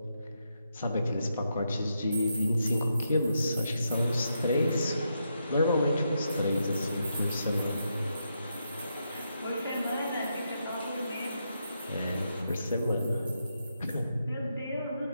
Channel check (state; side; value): inverted; both; correlation -0.82